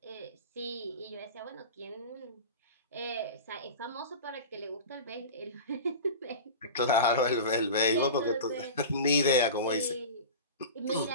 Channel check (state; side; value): inverted; both; correlation -0.32